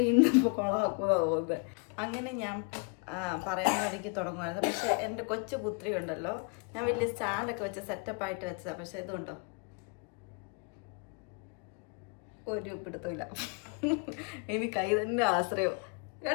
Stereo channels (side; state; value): right; quieter; 35.9 dB